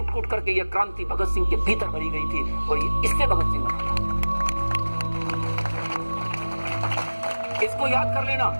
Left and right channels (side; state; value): both; inverted; correlation -1.00